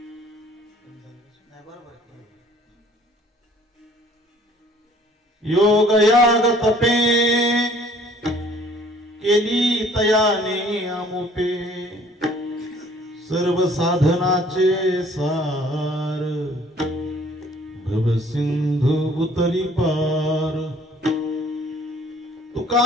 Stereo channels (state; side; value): normal; both; correlation 0.56